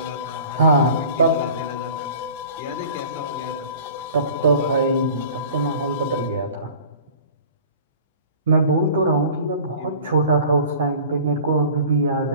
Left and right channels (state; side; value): inverted; both; correlation -0.44